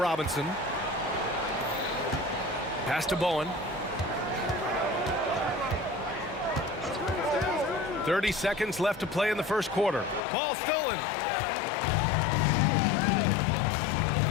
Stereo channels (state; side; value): drops out; right; at 10.2 s